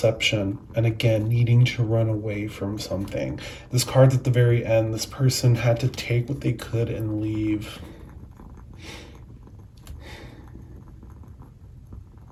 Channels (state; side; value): identical; both; correlation 1.00